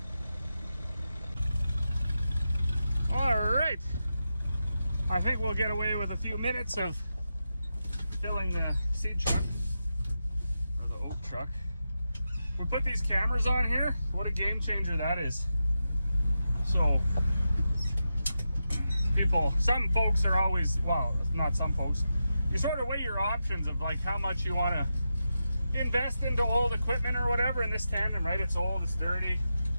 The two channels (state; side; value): inverted; both; correlation -0.89